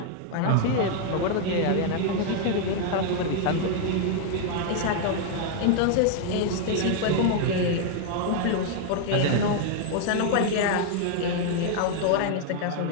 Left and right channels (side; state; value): both; different; correlation 0.00